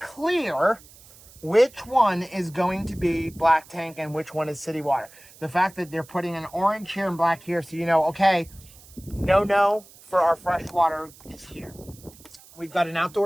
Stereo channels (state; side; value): noise; right; hiss, 23 dB below the sound